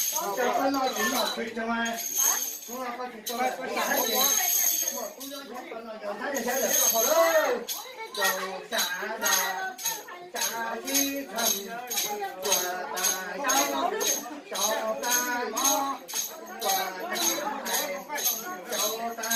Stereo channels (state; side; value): identical; both; correlation 1.00